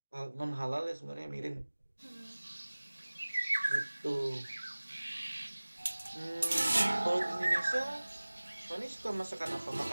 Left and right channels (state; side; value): inverted; both; correlation -1.00